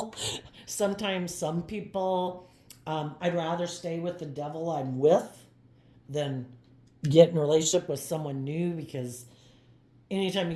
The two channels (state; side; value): identical; both; correlation 1.00